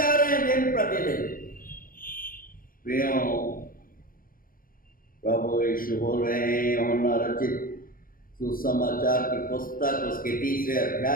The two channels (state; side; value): late; right; 0.41 ms